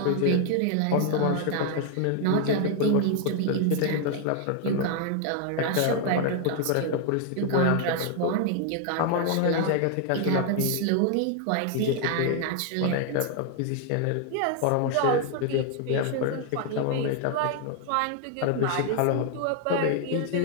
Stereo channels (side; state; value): both; different; correlation 0.00